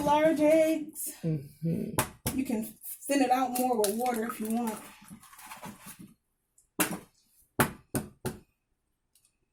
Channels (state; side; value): identical; both; correlation 1.00